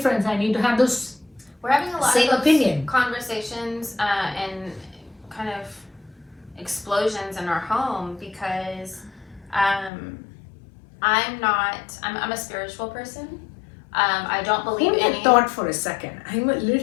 I need to have those We're having a lot same of opinion. Conversations and kind of explosions in our home because I'm a spiritual person. I don't believe in any... thought for a second. I'm a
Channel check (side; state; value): right; drops out; at 9.9 s